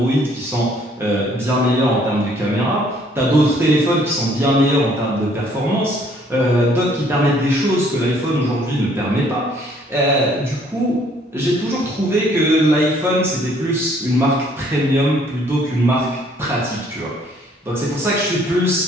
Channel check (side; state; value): both; normal; correlation 0.61